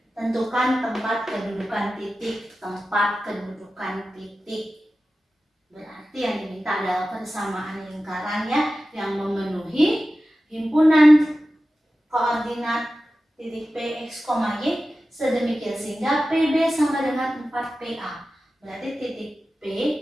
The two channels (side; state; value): both; normal; correlation 0.94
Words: tentukan tempat kedudukan titik. Berarti yang diminta adalah persamaan lingkarannya yang memenuhi himpunan koordinat titik P, X, Y sedemikian sehingga PB sama dengan 4PA. Berarti titik P